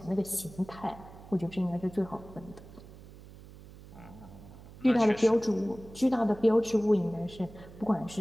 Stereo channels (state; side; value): noise; right; hum, 18 dB below the sound